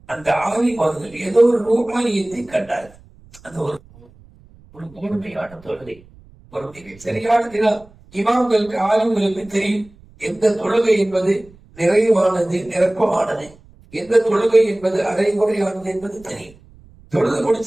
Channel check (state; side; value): noise; right; rumble, 25 dB below the sound